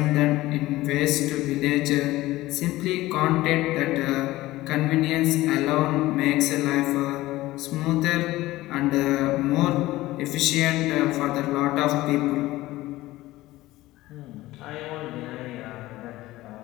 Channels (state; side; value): quieter; right; 17.5 dB